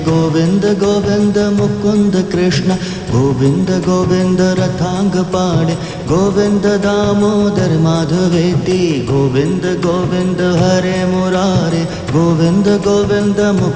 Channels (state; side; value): identical; both; correlation 1.00